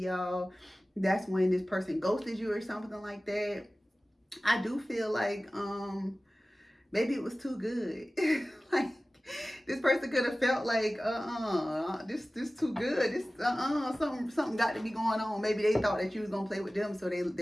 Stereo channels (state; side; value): normal; both; correlation 0.97